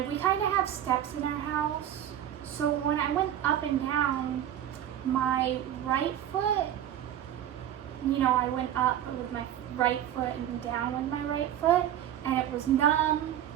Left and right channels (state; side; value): quieter; left; 11.0 dB